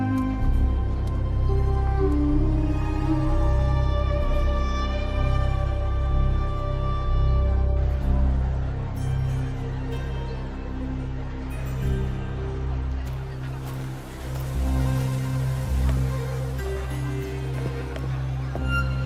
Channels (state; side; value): identical; both; correlation 1.00